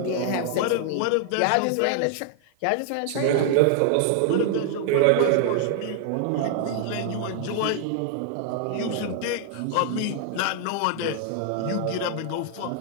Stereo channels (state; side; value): different; both; correlation 0.00